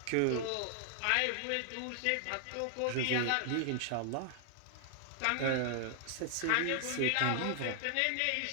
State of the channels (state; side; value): different; both; correlation 0.00